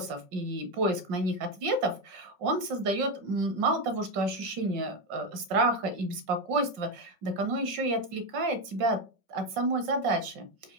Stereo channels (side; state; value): left; late; 5.7 ms